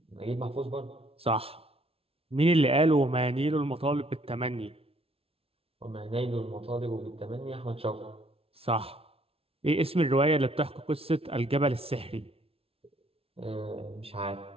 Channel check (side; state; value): left; late; 0.27 ms